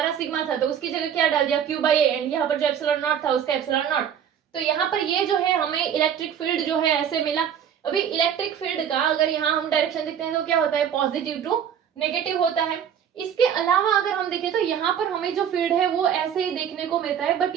सिग्मा था तो उसकी जगह क्या डाल दिया क्यू बाई ए एंड यहाँ पर जो एप्सिलॉन नॉट था उसका एप्सिलॉन नॉट। तो यहाँ पर ये जो है हमें इलेक्ट्रिक फील्ड जो है ऐसे मिला। अभी इलेक्ट्रिक फील्ड का अगर यहाँ हम डायरेक्शन देखते हैं तो क्या होता है पॉजिटिव टू नेगेटिव होता है। इसके अलावा अगर हम देखें तो यहाँ पर हमें जो फील्ड है वो ऐसे ही देखने को मिलता है, बट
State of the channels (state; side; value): quieter; left; 8.7 dB